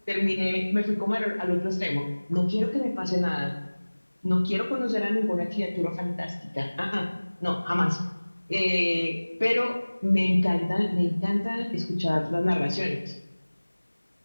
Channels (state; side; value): inverted; both; correlation -1.00